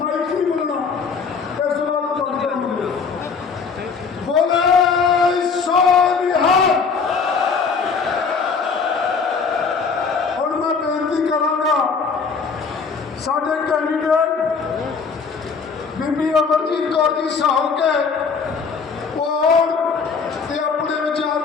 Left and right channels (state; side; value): quieter; right; 5.3 dB